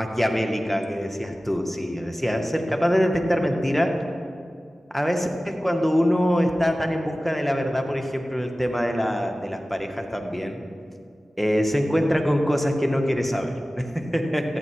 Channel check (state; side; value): normal; both; correlation 0.96